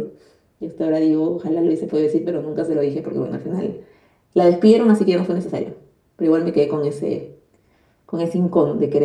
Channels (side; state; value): both; identical; correlation 1.00